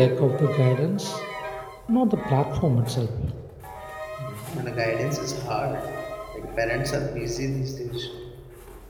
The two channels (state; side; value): identical; both; correlation 1.00